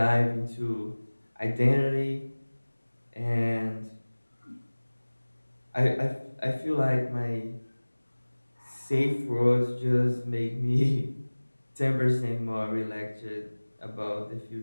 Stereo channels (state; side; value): inverted; both; correlation -1.00